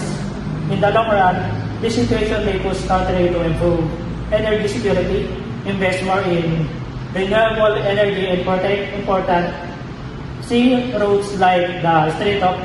In the long run, this situation may push countries to improve energy security, invest more in renewable energy, and protect important sea routes like the Strait of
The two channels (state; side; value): identical; both; correlation 1.00